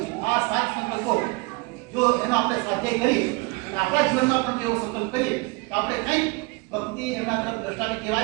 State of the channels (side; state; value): left; quieter; 26.3 dB